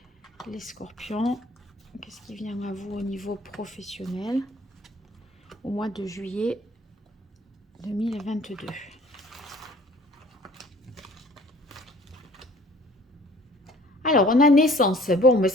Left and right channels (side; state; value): both; normal; correlation 0.52